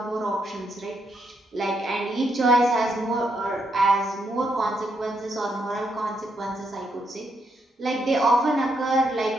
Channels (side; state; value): both; normal; correlation 0.78